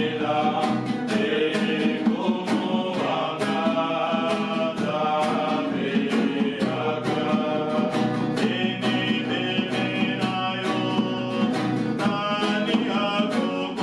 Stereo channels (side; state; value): both; identical; correlation 1.00